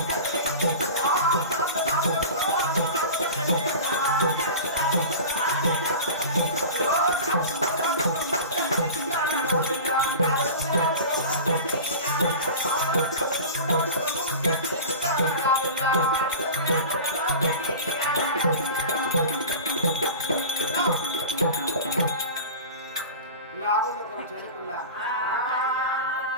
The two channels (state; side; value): inverted; both; correlation -0.33